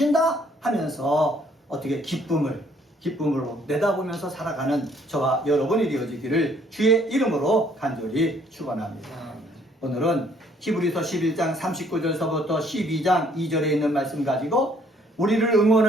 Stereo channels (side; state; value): both; normal; correlation 0.63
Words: 하면서 어떻게 기쁨으로 내다보면서 살아가는 저와 여러분이 되어지기를 주의 이름으로 간절히 축원합니다. 오늘은 히브리서 11장 39절서부터 12장 2절에 있는 말씀 가지고 우리를